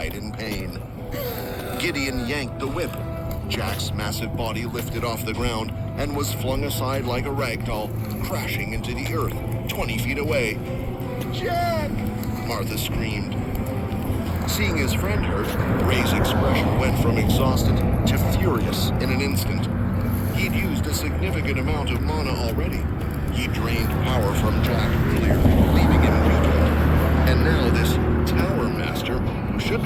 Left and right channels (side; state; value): both; identical; correlation 1.00